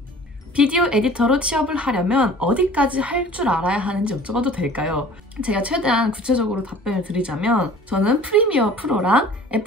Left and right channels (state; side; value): normal; both; correlation 0.46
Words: 비디오 에디터로 취업을 하려면 어디까지 할 줄 알아야 하는지 여쭤봐도 될까요? 제가 최대한 구체적으로 답변을 드리자면 저는 프리미어 프로랑